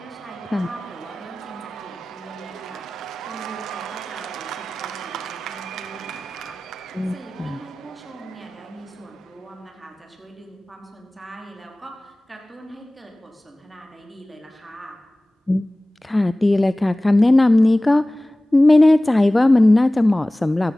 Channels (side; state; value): both; normal; correlation 0.98